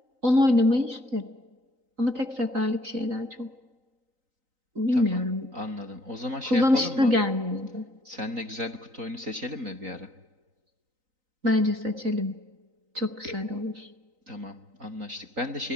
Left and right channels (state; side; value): late; left; 3.9 ms